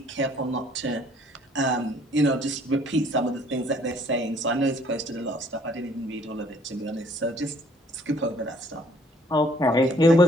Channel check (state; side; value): normal; both; correlation 0.60